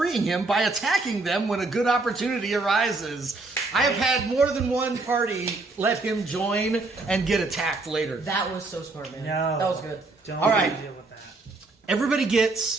him by attacking them when a good opportunity arises. I have had more than one party let him join and get attacked later. That was so smart, man. No. That was good. Don't All right. deal with that. Everybody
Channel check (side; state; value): left; quieter; 3.4 dB